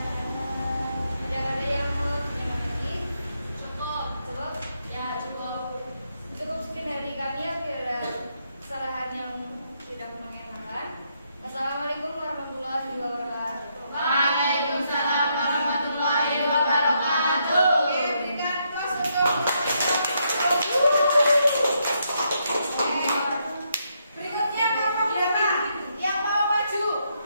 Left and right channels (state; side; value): inverted; both; correlation -0.77